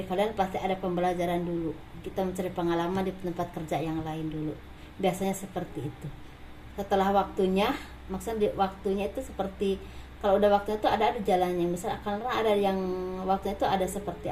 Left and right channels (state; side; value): identical; both; correlation 1.00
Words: kalian pasti ada pembelajaran dulu. Kita mencari pengalaman di tempat kerja yang lain dulu. Biasanya seperti itu. Setelah waktunya, maksudnya waktunya itu seperti kalau udah waktunya itu ada jalannya. Misal karena ada yang waktunya itu ada seperti